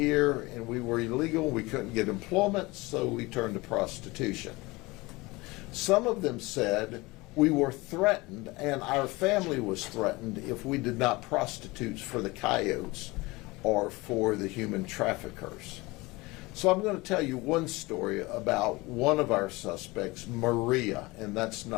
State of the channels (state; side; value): quieter; right; 22.6 dB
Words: and we were illegal, we couldn't get employment, so we turned to prostitution. Some of them said, we were threatened and our family was threatened if we did not prostitute for the coyotes or for the human traffickers. So I'm going to tell you one story about one of our suspects, Maria, and that's